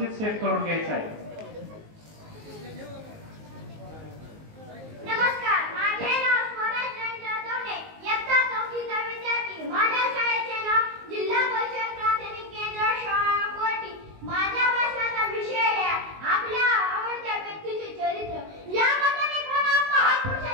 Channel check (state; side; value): late; left; 19 ms